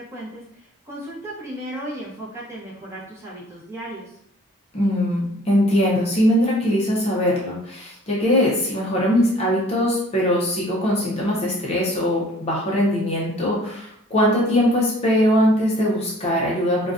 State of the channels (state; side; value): normal; both; correlation 0.52